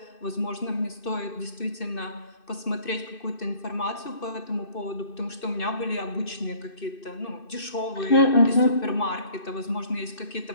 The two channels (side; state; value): right; late; 2.6 ms